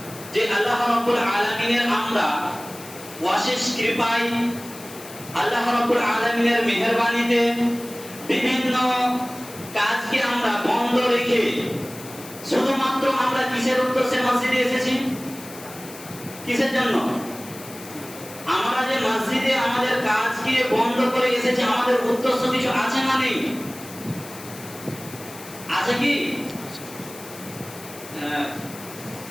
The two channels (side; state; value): left; noise; hiss, 16 dB below the sound